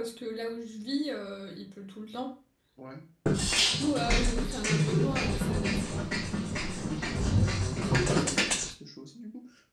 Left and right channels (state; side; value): identical; both; correlation 1.00